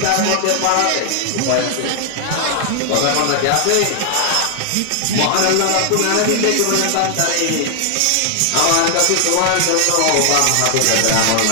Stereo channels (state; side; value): different; both; correlation 0.00